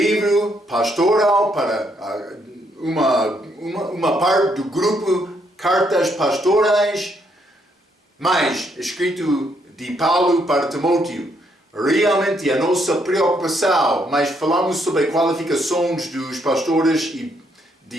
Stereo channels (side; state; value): both; normal; correlation 0.73